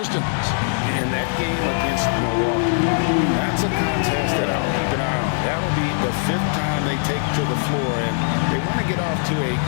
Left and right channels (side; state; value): right; silent; digital silence